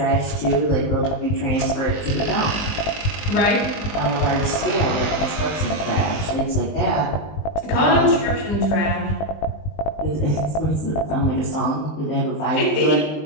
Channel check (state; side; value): late; right; 20 ms